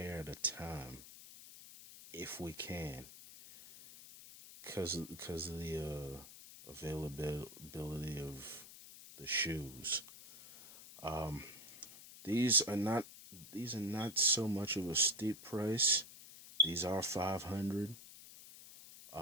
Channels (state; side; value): noise; left; hiss, 16 dB below the sound